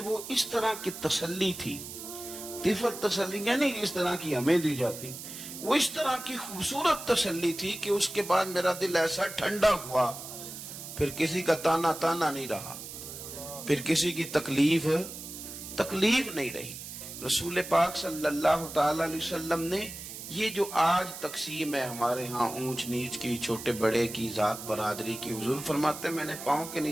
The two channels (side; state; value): right; noise; hiss, 11 dB below the sound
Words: اس طرح کی تسلی تھی، طفل تسلی نہیں جس طرح کی ہمیں دی جاتی، وہ اس طرح کی خوبصورت تسلی تھی کہ اس کے بعد میرا دل ایسا ٹھنڈا ہوا، پھر کسی کا تانا نہیں رہا، پھر کسی کی تکلیف نہیں رہی۔ رسول پاک صلی اللہ تعالی علیہ وسلم نے یہ جو آج تقسیم ہے ہمارے ہاں اونچ نیچ کی، چھوٹے بڑے کی، ذات برادری کی، حضور فرماتے ہیں میں نے پاؤں کے